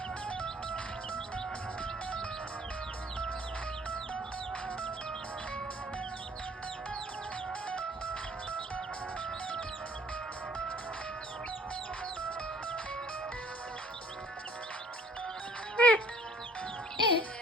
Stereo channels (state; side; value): normal; both; correlation 0.57